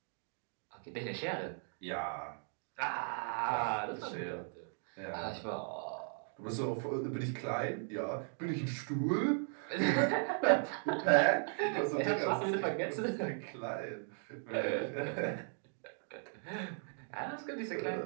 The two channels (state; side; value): silent; left; 53 dB below the other